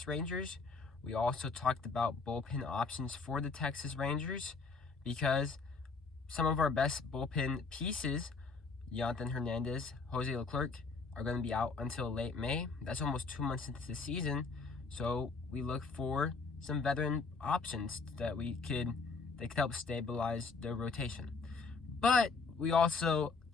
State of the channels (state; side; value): quieter; right; 4.4 dB